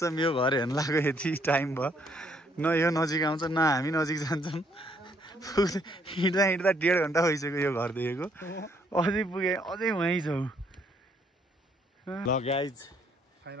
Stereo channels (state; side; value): normal; both; correlation 0.68